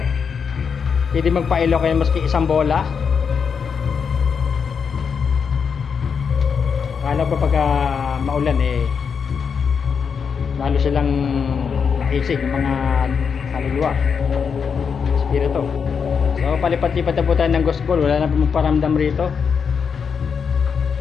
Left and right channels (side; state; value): right; quieter; 6.3 dB